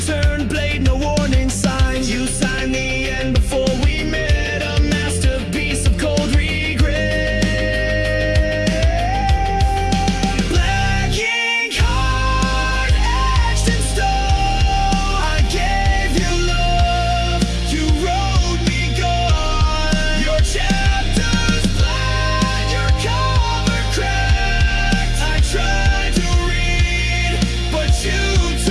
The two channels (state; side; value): identical; both; correlation 1.00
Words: blade, no warning signs. You signed the end before we met, a masterpiece of cold regret. Black ink heart etched in stone. I gave you love, you wrote me gone. Your chapters blind, your cover cracked. I tried to read, but you